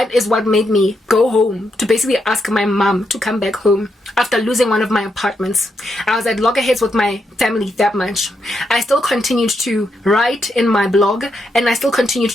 is what made me go home to basically ask my mom to come back home after losing one of my apartments. I was at loggerheads with my family that much. I still continued to write in my blog, and I still continued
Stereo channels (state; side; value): normal; both; correlation 0.81